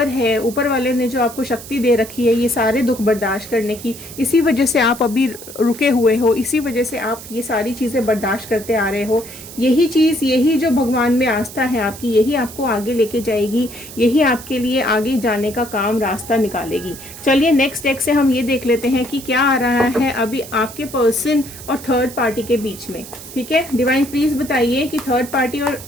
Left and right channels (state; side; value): noise; right; hiss, 15 dB below the sound